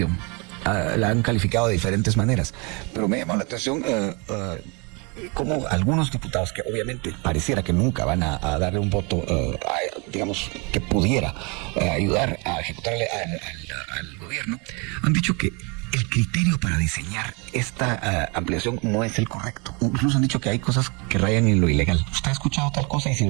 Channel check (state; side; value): quieter; left; 30.9 dB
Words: La han calificado de diferentes maneras, pero me llama la atención como algunos diputados que obviamente pareciera que nunca van a darle un voto, digamos, que pudiera ayudar a ejecutar al gobierno, han dicho que el criterio para diseñar esta ampliación no es el correcto. Incluso han dicho que hay cosas que rayan en lo ilegal. ¿Usted ha escuchado tal cosa? Y si